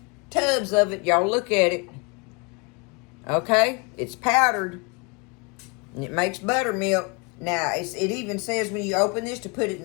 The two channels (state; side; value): quieter; right; 30.9 dB